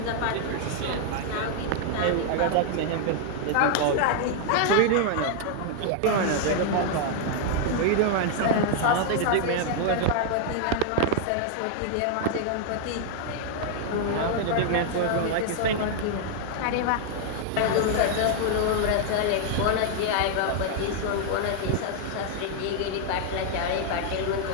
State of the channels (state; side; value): different; both; correlation 0.00